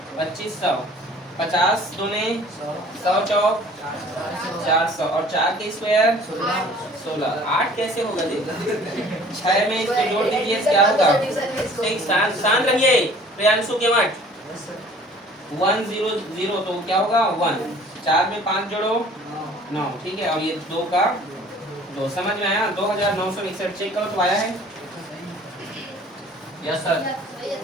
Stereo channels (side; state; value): both; normal; correlation 0.51